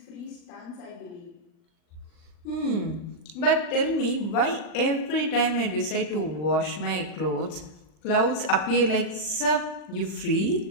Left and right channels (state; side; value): late; right; 39 ms